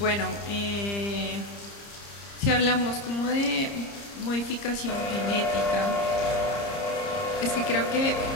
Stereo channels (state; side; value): late; right; 30 ms